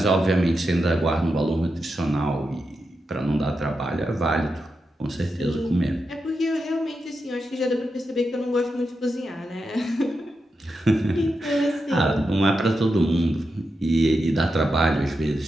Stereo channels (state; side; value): normal; both; correlation 0.87